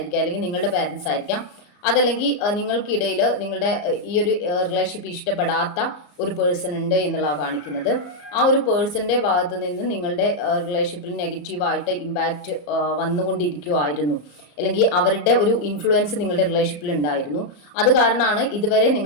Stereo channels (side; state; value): right; late; 34 ms